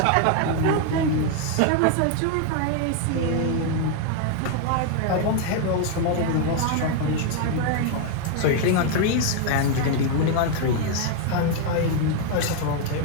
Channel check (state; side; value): different; both; correlation 0.00